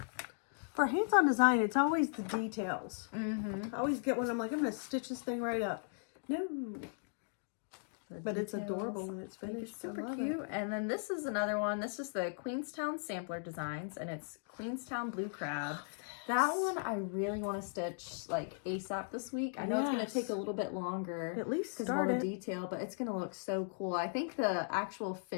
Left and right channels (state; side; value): silent; right; digital silence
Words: For hands-on design, it's always the details. Mm-hmm. I always get one, I'm like, I'm going to stitch this thing right up. No. But it's adorable when it's finished. It's super I love cute. it. And then this is another one. This is the Queenstown Sampler Designs, and it's Queenstown Blue Crab. That one I really want to stitch like ASAP this week. I know it's going to take a little bit longer. At least because of all start the it. detail, but it's going to look so cool. I think the actual